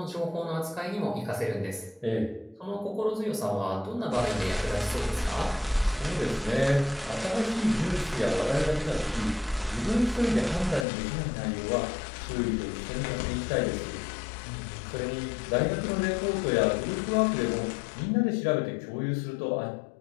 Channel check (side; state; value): right; drops out; at 10.9 s